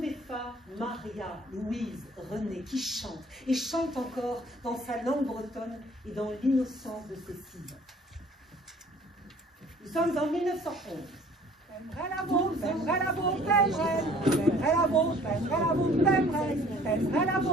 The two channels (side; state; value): both; normal; correlation 0.53